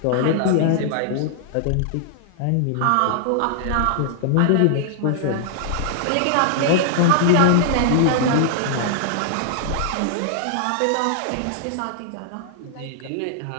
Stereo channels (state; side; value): different; both; correlation -0.01